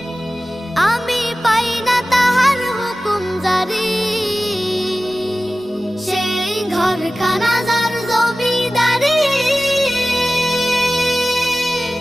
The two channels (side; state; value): both; normal; correlation 0.96